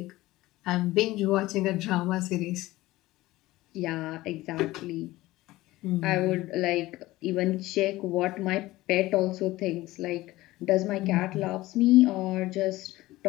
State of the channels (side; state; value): right; quieter; 18.0 dB